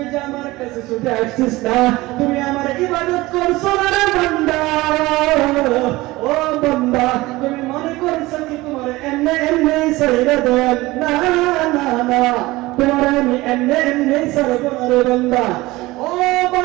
না, তুমি আমার ইবাদত করছো না রে বান্দা। ও বান্দা, তুমি মনে করছো কি তোমার এমনি ছেড়ে দেব? না না না, তোমার আমি এমনি ছেড়ে না রে বান্দা। ও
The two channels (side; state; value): left; quieter; 19.8 dB